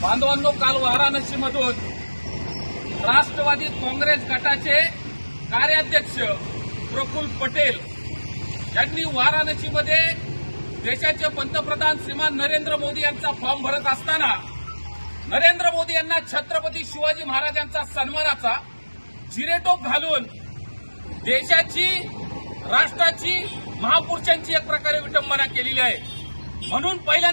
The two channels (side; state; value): both; inverted; correlation -1.00